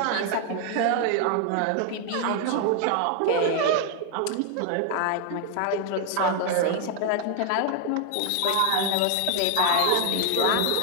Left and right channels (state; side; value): different; both; correlation 0.00